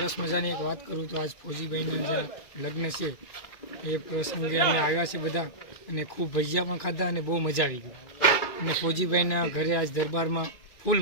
મજાની એક વાત કરું તો આજ ફોજીભાઈના જે લગ્ન છે એ પ્રસંગે અમે આવ્યા છે બધા અને ખૂબ ભજીયા પણ ખાધા અને બહુ મજા આવી ગઈ. અને ફોજીભાઈના ઘરે આજ દરબારમાં ફૂલ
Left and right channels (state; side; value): late; right; 2.3 ms